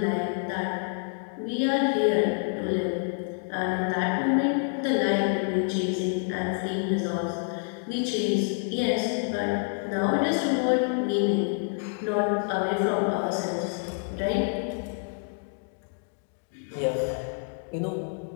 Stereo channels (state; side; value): silent; right; 60 dB below the other